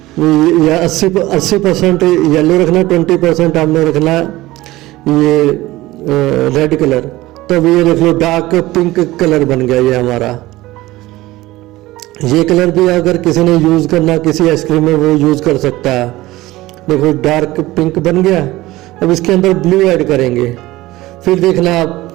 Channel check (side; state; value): left; quieter; 18.0 dB